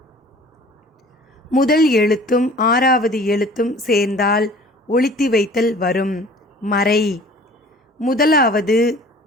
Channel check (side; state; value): both; normal; correlation 0.47